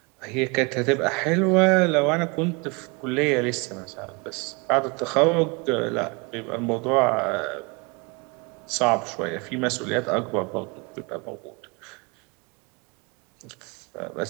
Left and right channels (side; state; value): left; quieter; 29.2 dB